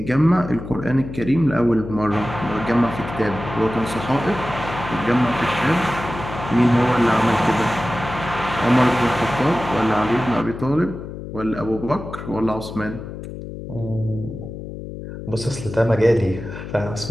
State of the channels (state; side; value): noise; left; hum, 10 dB below the sound